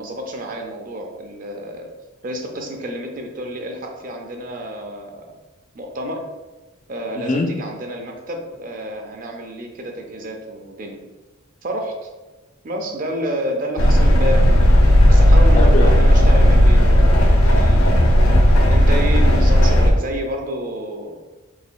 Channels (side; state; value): both; normal; correlation 0.88